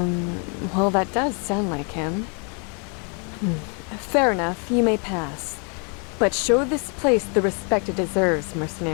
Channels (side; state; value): right; quieter; 37.2 dB